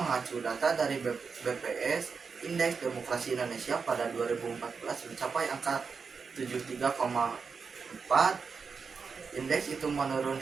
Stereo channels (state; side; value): quieter; left; 5.3 dB